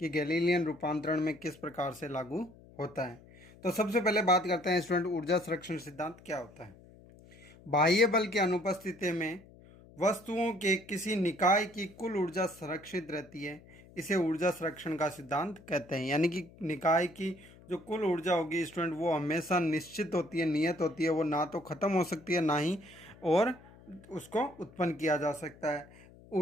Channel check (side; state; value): left; noise; hum, 23 dB below the sound